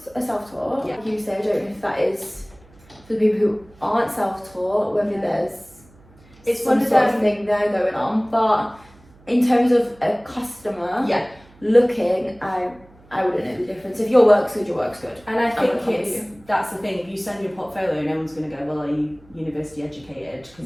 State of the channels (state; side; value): noise; right; hum, 27 dB below the sound